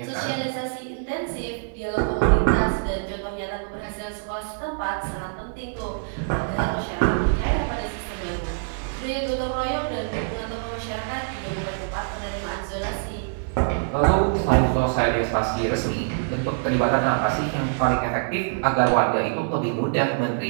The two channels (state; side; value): silent; left; 58 dB below the other